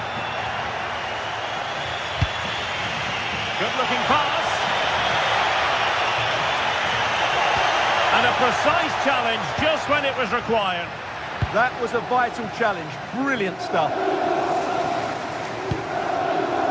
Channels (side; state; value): both; identical; correlation 1.00